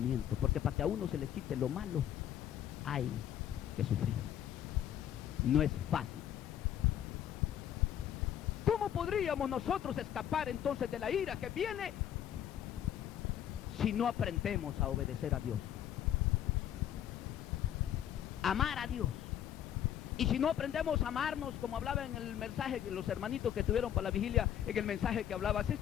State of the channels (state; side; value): quieter; right; 10.5 dB